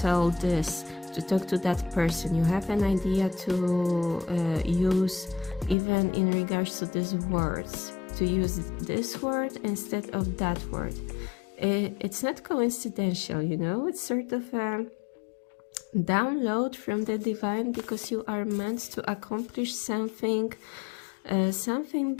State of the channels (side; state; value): right; drops out; at 5.8 s